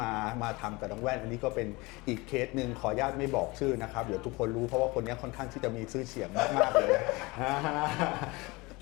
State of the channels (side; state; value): right; quieter; 24.1 dB